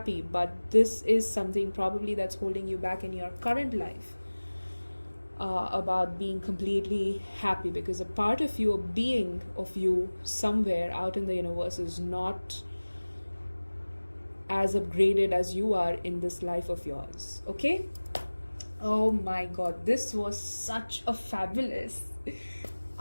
but this is something probably that's holding you back in your current life, about being completely happy, because a part of you, a being of you somewhere out in the universe, is not as upgraded as you are in this life of yours. Okay? Oh my god, this was such a fabulous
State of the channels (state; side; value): inverted; both; correlation -1.00